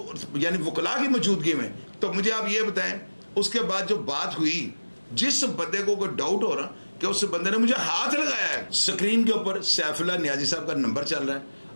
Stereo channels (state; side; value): inverted; both; correlation -1.00